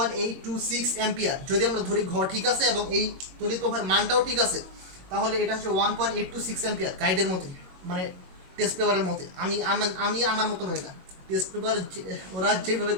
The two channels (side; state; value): left; late; 22 ms